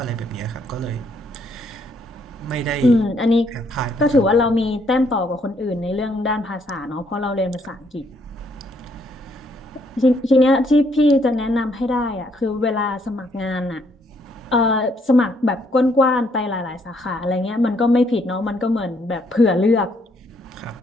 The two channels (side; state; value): both; normal; correlation 0.70